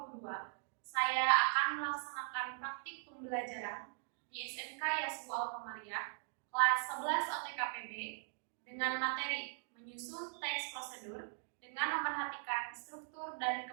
saya akan melaksanakan praktik pembelajaran di SMK Yasbu Al-Qamariyah kelas 11 OTKPB dengan materi menyusun teks prosedur dengan memperhatikan struktur dan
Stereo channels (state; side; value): silent; left; digital silence